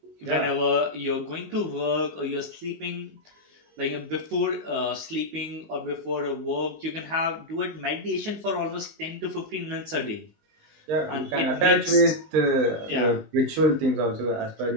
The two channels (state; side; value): late; left; 19 ms